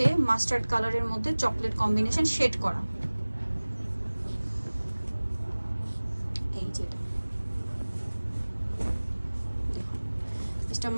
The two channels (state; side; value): inverted; both; correlation -1.00